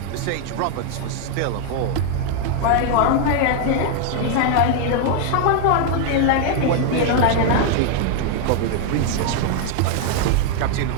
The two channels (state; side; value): different; both; correlation 0.00